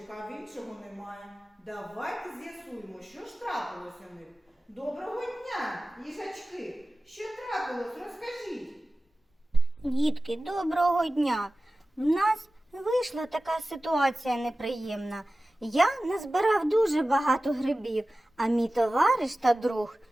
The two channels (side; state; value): both; normal; correlation 0.96